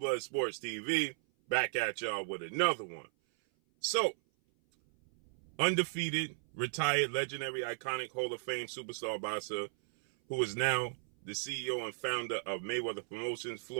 Sports TV, back at y'all with another one. So, undefeated, retired, legendary, iconic Hall of Fame superstar boxer, who is now the CEO and founder of Mayweather Promotions,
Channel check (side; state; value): left; silent; 54 dB below the other